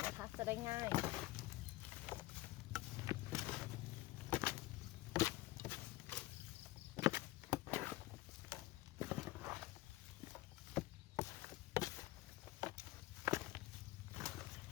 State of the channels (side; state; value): right; quieter; 18.2 dB